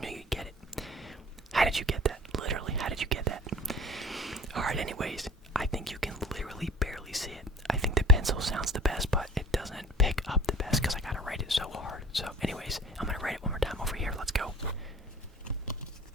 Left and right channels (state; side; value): normal; both; correlation 0.45